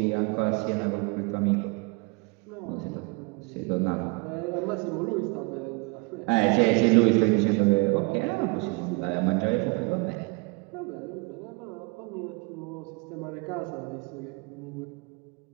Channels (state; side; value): quieter; left; 29.4 dB